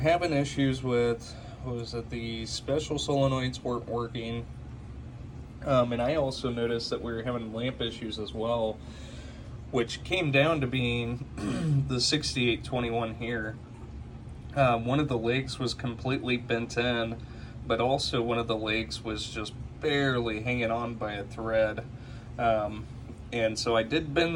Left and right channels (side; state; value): both; identical; correlation 1.00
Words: issues with was that the special solenoids weren't working, and I also noticed that we were having lamp issues as well, which came down to being the 6821 here. One of the legs was completely bent in, but also one of the legs was just barely hanging on by a thread. And so I did